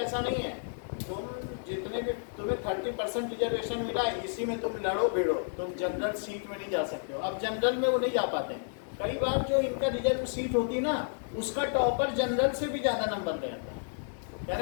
नहीं है, तुम जितने भी तुम्हें 30% रिजर्वेशन मिला है, इसी में तुम लड़ो भिड़ो, तुम जनरल सीट में नहीं जा सकते हो। अब जनरल में वो नहीं जा पाते हैं। कई बार जो इनका रिजर्व सीट होती है ना, उसका टॉपर जनरल से भी ज़्यादा नंबर ले आता है,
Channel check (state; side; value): silent; right; digital silence